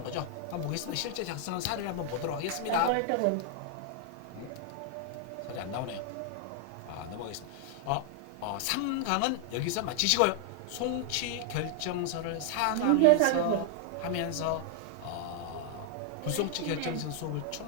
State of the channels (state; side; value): different; both; correlation 0.00